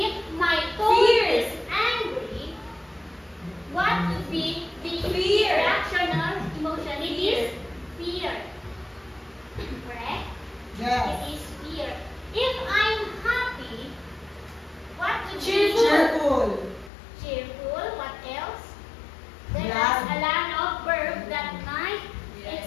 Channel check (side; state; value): right; drops out; at 16.9 s